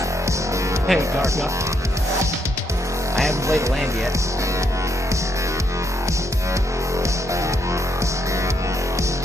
Hey, Darka. I haven't played a land yet.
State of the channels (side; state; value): both; normal; correlation 0.76